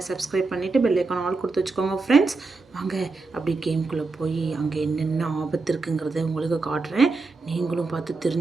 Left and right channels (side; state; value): left; quieter; 3.8 dB